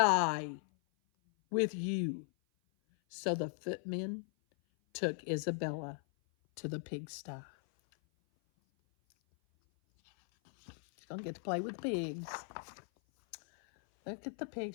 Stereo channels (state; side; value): silent; right; 53 dB below the other